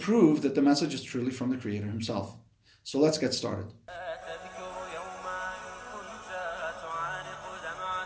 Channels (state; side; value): identical; both; correlation 1.00